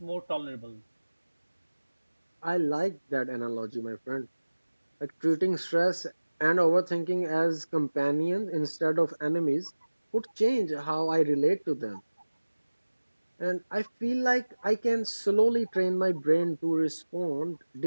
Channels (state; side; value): inverted; both; correlation -1.00